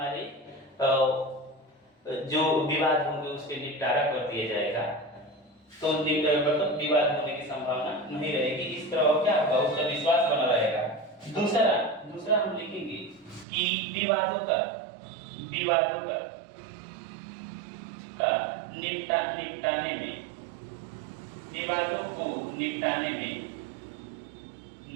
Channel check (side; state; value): left; drops out; at 13.5 s